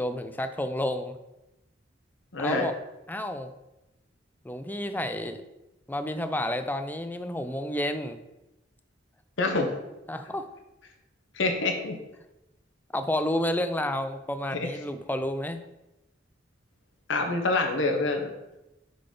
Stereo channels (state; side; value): normal; both; correlation 0.46